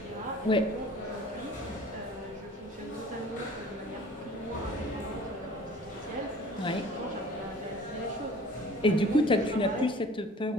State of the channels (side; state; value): both; normal; correlation 0.48